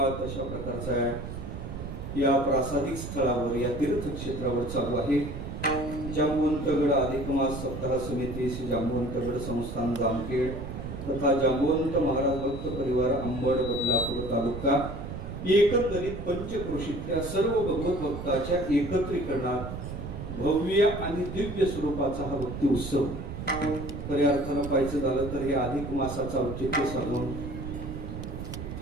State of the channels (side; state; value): right; noise; rumble, 8 dB below the sound